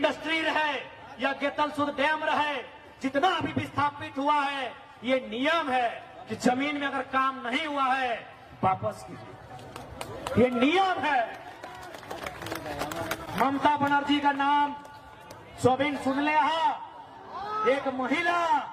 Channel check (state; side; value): identical; both; correlation 1.00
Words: रहे या गेतलसूद डैम रहे, जितना भी विस्थापित हुआ है, ये नियम है कि जमीन में अगर काम नहीं हुआ है वापस कीजिए, ये नियम है। ममता बनर्जी का नाम सोबिन सुन ले, एक महिला